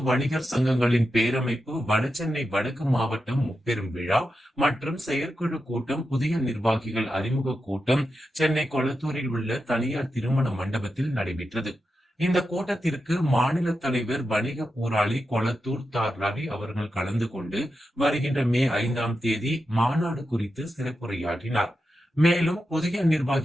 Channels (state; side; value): normal; both; correlation 0.89